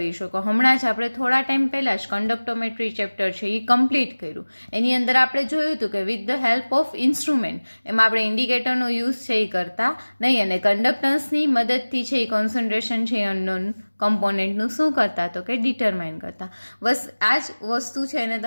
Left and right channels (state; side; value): inverted; both; correlation -1.00